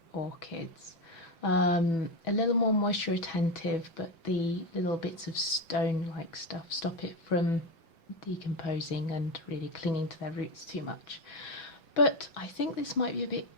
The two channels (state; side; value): late; right; 5.7 ms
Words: orchids. A little more moisture retentive, but the little bits of stone-like stuff stop it from decomposing and really clinging to their roots too much. But I think this might be a bit